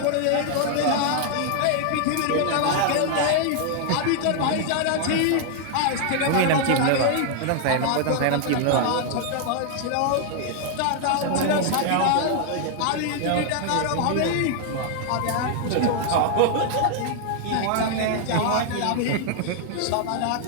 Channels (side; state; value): both; different; correlation 0.00